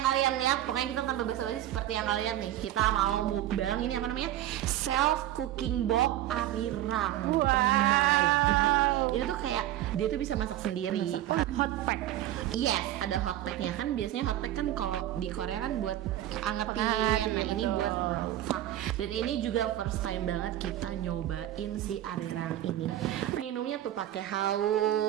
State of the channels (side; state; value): left; quieter; 13.3 dB